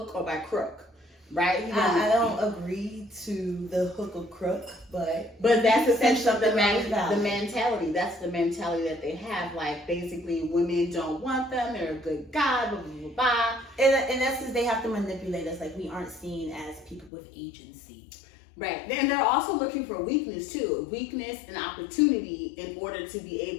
or by crook, right? I don't agree to the hook or crook, but that's essentially the valid. mentality. That's the mentality that they have. Like basically, women don't want them. They're a good guy, blah blah blah blah. In essence, they have to manipulate us. Like we aren't seen as people with agency. Right. Then they're also looking for weakness too. Weakness and opportunity in order to be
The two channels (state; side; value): drops out; right; at 17.1 s